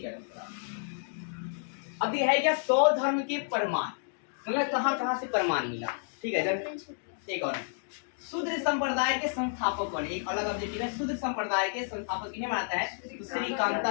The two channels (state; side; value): silent; right; digital silence